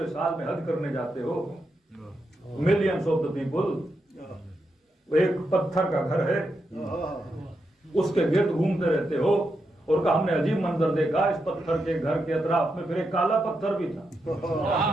साल में हज करने जाते हो, मिलियंस ऑफ द पीपल, वो एक पत्थर का घर है, उसके गिर्द घूमते रहते हो, और का हमने अजीब मंजर देखा, इस पत्थर के घर के अतराफ में फिर एक काला पत्थर भी था।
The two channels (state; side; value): normal; both; correlation 0.85